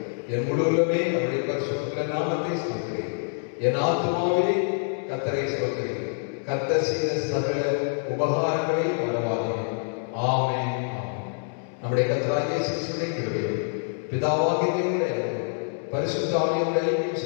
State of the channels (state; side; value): silent; right; digital silence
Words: என் முழுவதுமே அவருடைய பரிசுத்த நாமத்தை ஸ்தோத்திரி. என் ஆத்துமாவே கர்த்தரை ஸ்தோத்திரி, கர்த்தர் செய்த சகல உபகாரங்களை மறவாதே. ஆமென். நம்முடைய கர்த்தராகிய இயேசு கிறிஸ்துவின் கிருபையும் பிதாவாகிய தேவனுடைய அன்பும் பரிசுத்த ஆவியானவருடைய ஐக்கியம்